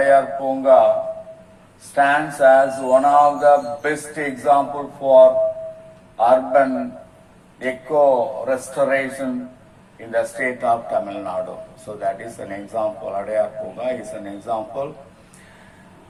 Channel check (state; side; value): identical; both; correlation 1.00